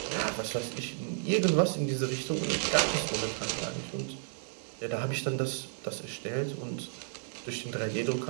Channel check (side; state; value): left; silent; digital silence